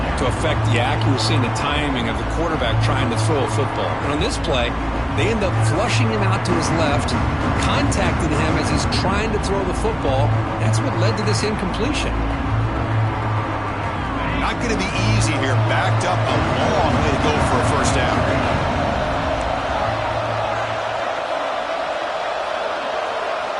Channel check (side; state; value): both; identical; correlation 1.00